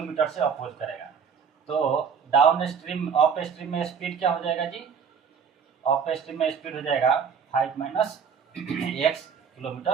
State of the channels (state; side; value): quieter; left; 6.6 dB